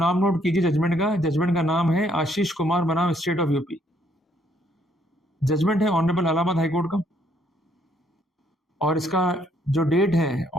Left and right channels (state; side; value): normal; both; correlation 0.68